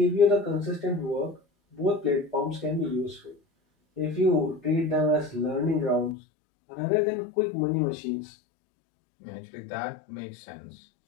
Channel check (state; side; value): drops out; right; at 6.2 s